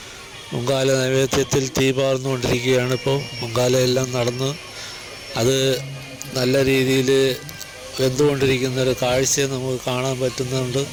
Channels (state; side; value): identical; both; correlation 1.00